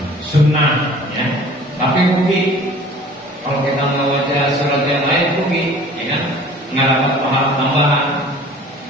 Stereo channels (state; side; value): normal; both; correlation 0.47